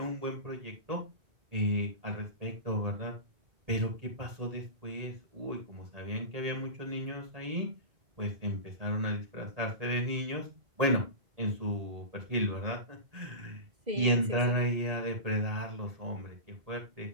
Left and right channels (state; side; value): late; left; 1.8 ms